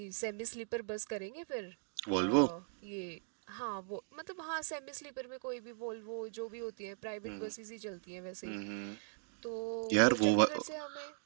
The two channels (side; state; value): left; silent; digital silence